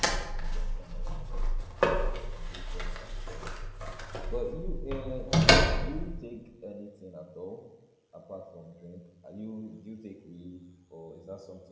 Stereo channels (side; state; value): both; identical; correlation 1.00